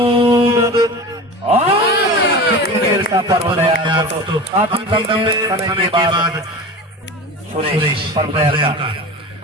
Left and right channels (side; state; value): both; normal; correlation 0.32